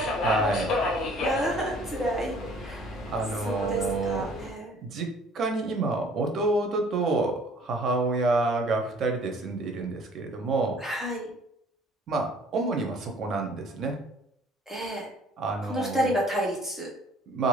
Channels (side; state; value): both; normal; correlation 0.55